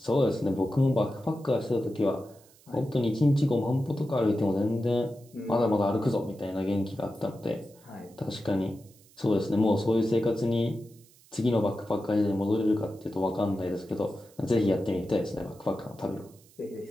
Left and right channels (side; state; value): right; noise; hiss, 27 dB below the sound